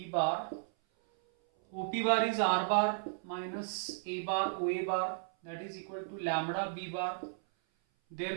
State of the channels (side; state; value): left; silent; 55 dB below the other